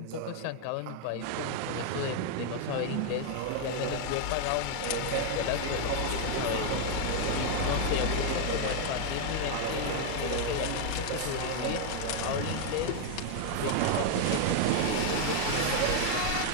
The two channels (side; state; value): both; different; correlation 0.00